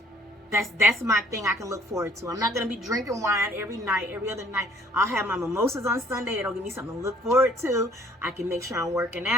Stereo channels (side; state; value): both; normal; correlation 0.58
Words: That's my thing I can look forward to. I'm not going to be drinking wine every night, every other night. I'll have my mimosas on Sunday. It'll give me something to look forward to. I can make sure I'm working